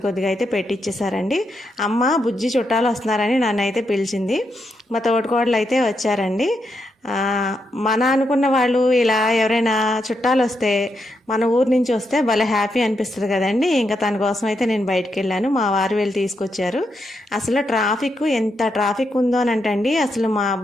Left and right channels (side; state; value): both; normal; correlation 0.82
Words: కొద్దిగా అయితే పెట్టిచ్చేసారండి. అమ్మ బుజ్జి చుట్టాలు వస్తున్నారని నన్ను అయితే పిలిచింది. మా తోటికోడలు అయితే వచ్చారండి. మన అనుకున్న వాళ్ళు ఇలా ఎవరైనా చుట్టాలు వస్తే, మన ఊరు నుంచి వస్తే భలే హ్యాపీ అనిపిస్తుంది కదండి. ఇంకా తన కోసం అయితే నేను బయటికి వెళ్ళాను. మా వారు వెళ్ళి తీసుకొచ్చారు. అసలు ఎంత ట్రాఫిక్ ఉందో అని అంటండి. అసలు మా